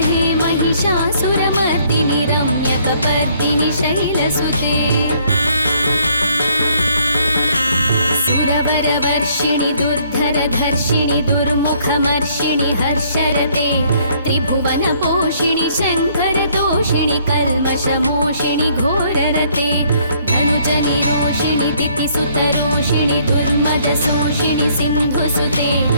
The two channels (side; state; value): both; inverted; correlation -0.64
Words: हे महिषासुरमर्दिनि रम्यकपर्दिनि शैलसुते सुरवरवर्षिणि दुर्धरधर्षिणि दुर्मुखमर्षिणि हर्षरते त्रिभुवनपोषिणि शङ्करतोषिणि कल्मषमोषिणि घोररते धनुजनिरोषिणि दितिसुतरोषिणि दुर्मदशोषिणि सिन्धुसुते